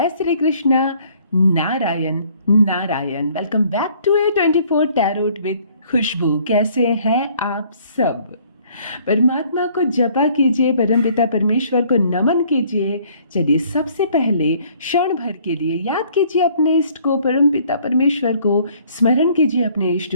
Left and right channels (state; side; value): inverted; both; correlation -0.59